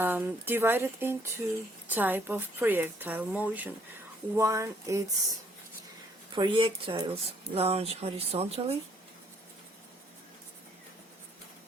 divided into type of projectile motion. One is projectiles launch horizontally,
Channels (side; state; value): both; normal; correlation 0.65